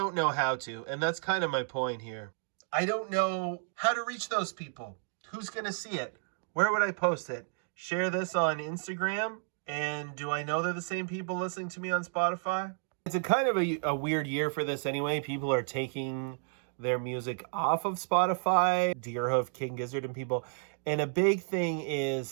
know how to, and that's kind of my point here. I don't know how to reach those people. Who's going to see it? Where would I post it? Share this on Instagram? And do I know they're the same people listening to me on Spotify? It's a kind of a weird year for this anyway. People are taking their music off of Spotify, Deerhoof, King Gizzard, and people. And a big thing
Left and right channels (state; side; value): silent; left; digital silence